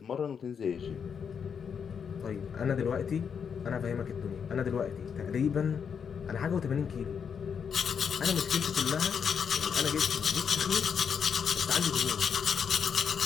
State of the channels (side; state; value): right; quieter; 6.9 dB